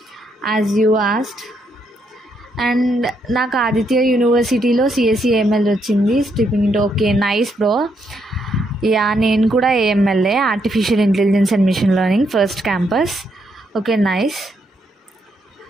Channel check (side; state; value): both; normal; correlation 0.76